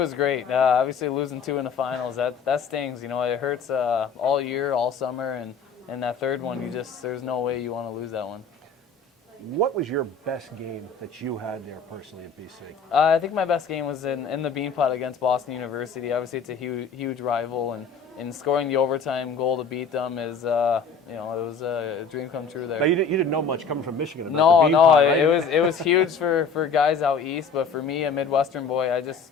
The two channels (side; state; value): right; quieter; 5.1 dB